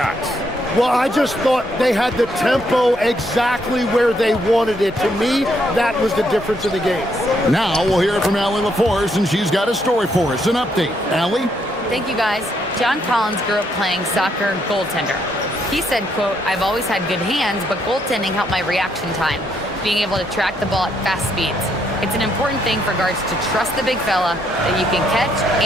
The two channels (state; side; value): normal; both; correlation 0.74